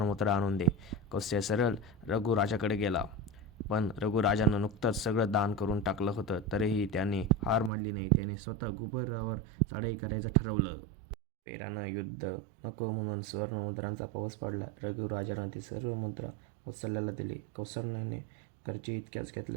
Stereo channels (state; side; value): drops out; left; at 7.7 s